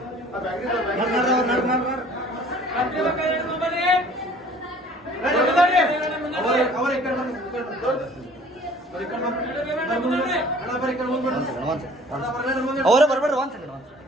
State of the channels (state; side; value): normal; both; correlation 0.51